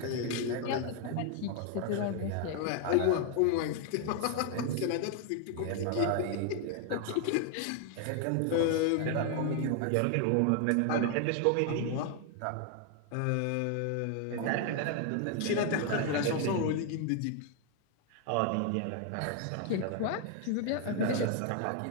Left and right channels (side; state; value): both; different; correlation 0.00